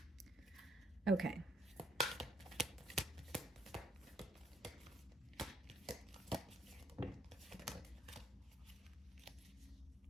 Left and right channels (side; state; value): both; normal; correlation 0.68